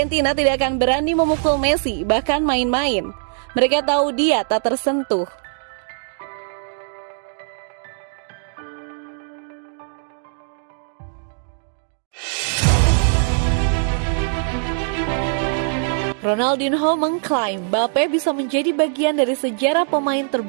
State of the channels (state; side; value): silent; left; digital silence